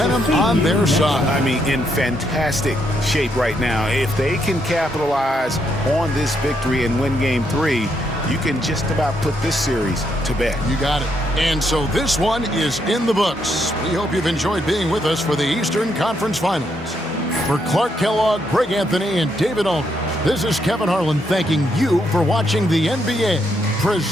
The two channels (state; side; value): normal; both; correlation 0.77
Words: on their side. I mean, in fantastic shape right now. If they can capitalize on this victory and win game 3, you can just about put this series to bed. You got it. And so this one is in the books. We hope you've enjoyed being with us for the Eastern Conference Finals. For Clark Kellogg, Greg Anthony, and David Aldridge, this is Kevin Harlan thanking you for watching the NBA,